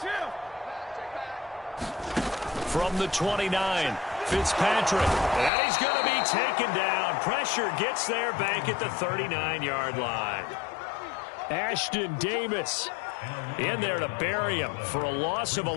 From the 29, Fitzpatrick. And he's going to be taken down. Pressure gets there back at the 39-yard line. Ashton Davis in there to bury him for a loss of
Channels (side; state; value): right; drops out; at 5.5 s